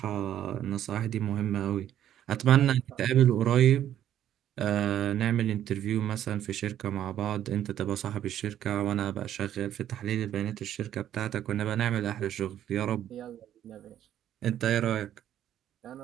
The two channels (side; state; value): left; quieter; 11.1 dB